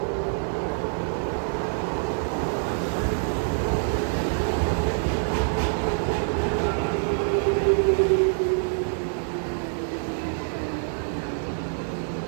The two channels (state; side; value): silent; left; 61 dB below the other